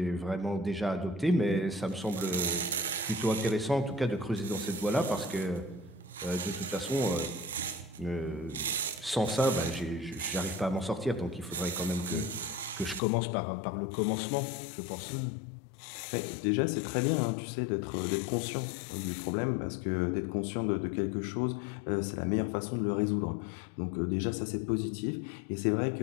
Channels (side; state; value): right; drops out; at 13.0 s